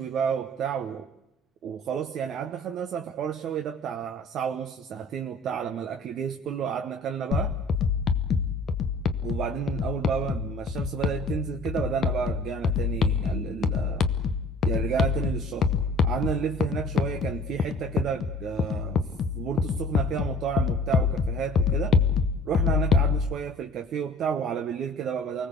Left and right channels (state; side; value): normal; both; correlation 0.48